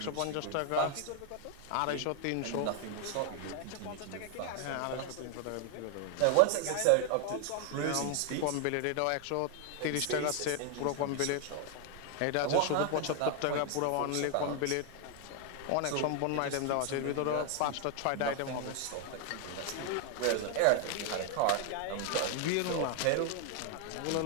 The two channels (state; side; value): different; both; correlation 0.00